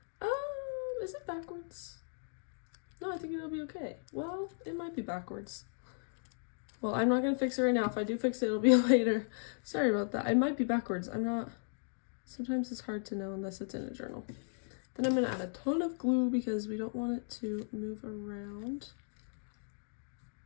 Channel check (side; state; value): right; silent; digital silence